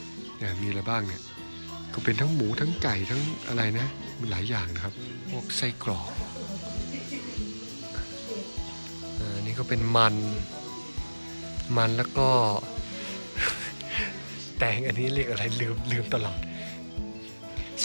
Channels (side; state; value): both; inverted; correlation -1.00